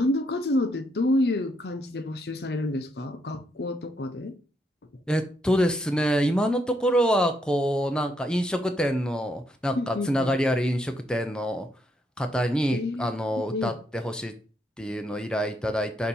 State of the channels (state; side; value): normal; both; correlation 0.76